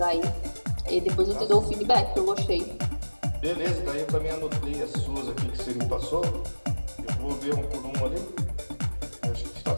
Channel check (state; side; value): inverted; both; correlation -1.00